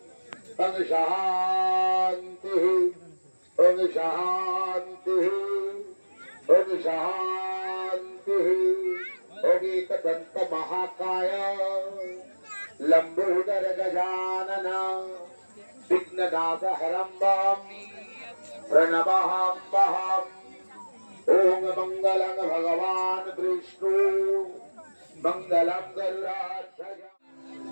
ओम शांति ओम शांति ओम शांति ओम एकदंत महाकाय लंबोदर गजानन विघ्ननाथ हरम्बम प्रणवाम्बहम् ओम मंगलं भगवान विष्णु मंगलं गरुडाध्वज।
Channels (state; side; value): inverted; both; correlation -1.00